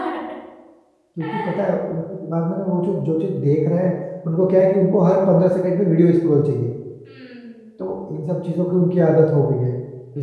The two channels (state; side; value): identical; both; correlation 1.00